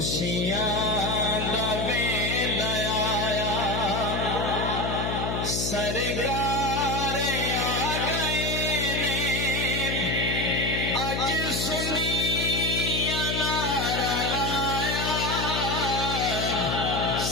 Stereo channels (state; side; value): noise; left; hum, 2 dB below the sound